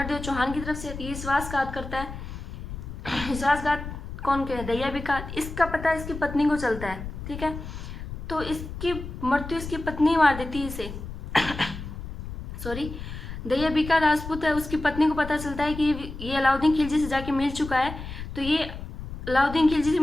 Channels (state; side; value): noise; left; rumble, 9 dB below the sound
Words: चौहान की तरफ से। ये विश्वासघात करता है, विश्वासघात कौन करे, दहिया बीका। इसका पता इसकी पत्नी को चलता है, ठीक है। तो इसकी मृत्यु इसकी पत्नी मार देती है इसे सॉरी, दहिया बीका राजपूत है, उसकी पत्नी को पता चलता है कि ये अलाउद्दीन खिलजी से जाके मिल चुका है, तो ये अलाउद्दीन खिलजी से